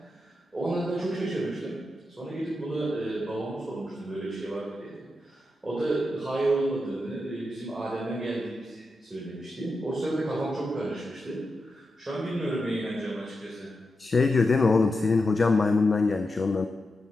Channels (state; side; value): normal; both; correlation 0.88